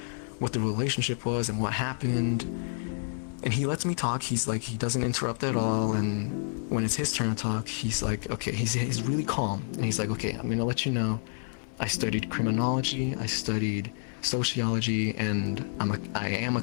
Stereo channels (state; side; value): silent; right; 58 dB below the other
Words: what the relationship was, and what happened. And he lets me talk. He's like, he doesn't interrupt at all. And when it's his turn to talk, he's like, okay, he's really calm. And he's like, okay, I'm gonna let you know, I studied criminology, I studied sociology, and I am a